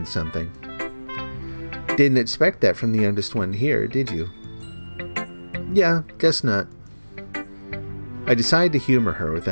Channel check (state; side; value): inverted; both; correlation -1.00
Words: something. Didn't expect that from the youngest one here, did you? Yeah, guess not. I decided to humor her with